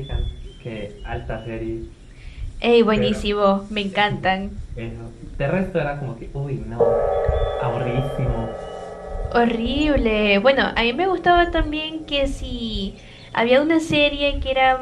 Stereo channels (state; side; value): identical; both; correlation 1.00